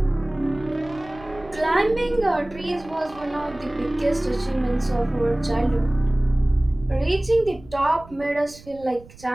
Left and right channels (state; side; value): noise; right; rumble, 21 dB below the sound